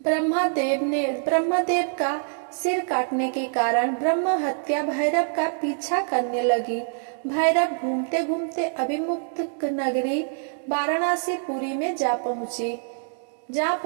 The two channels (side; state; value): left; silent; digital silence